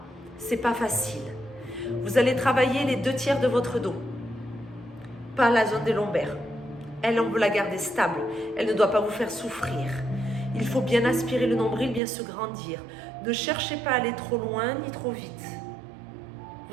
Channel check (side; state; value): left; drops out; at 12.0 s